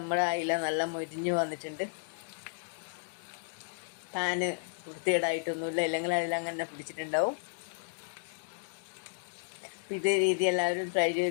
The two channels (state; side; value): silent; right; digital silence